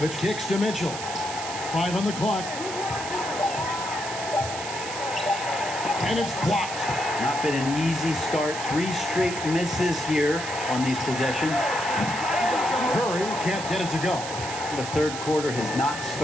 kicks to Mitchell. 5 on the clock. And it's blocked. Not been an easy start. 3 straight misses here on these possessions. Curry can't get it to go. The third quarter has not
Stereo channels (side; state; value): right; noise; hiss, 8 dB below the sound